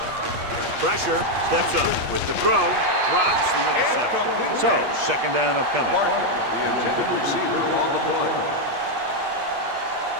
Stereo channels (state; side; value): late; left; 8.4 ms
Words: Pressure, steps up with the throw, drops the interception. So, second down upcoming. Parker, the intended receiver on the play.